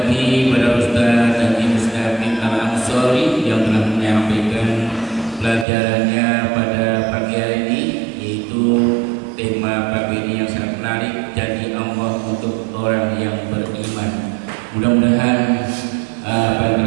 pada Ustaz Haji Mustaqim Al-Ansori yang telah menyampaikan pelajarannya pada pagi hari ini, yaitu tema pagi ini yang sangat menarik, janji Allah untuk orang yang beriman. Mudah-mudahan apa yang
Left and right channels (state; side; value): drops out; left; at 5.7 s